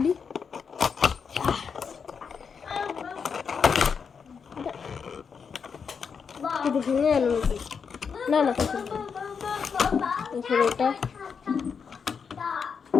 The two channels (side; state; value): right; quieter; 6.2 dB